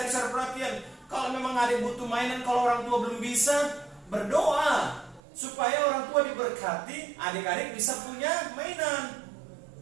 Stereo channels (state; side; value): drops out; left; at 5.2 s